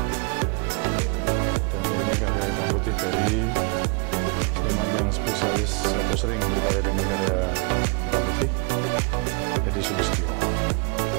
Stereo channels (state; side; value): quieter; left; 34.3 dB